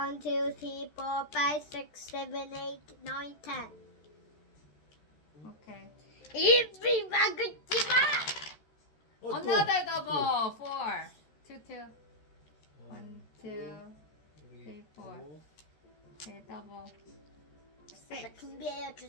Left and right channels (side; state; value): right; late; 13 ms